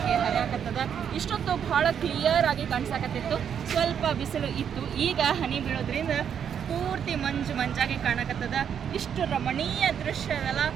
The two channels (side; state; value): left; quieter; 8.2 dB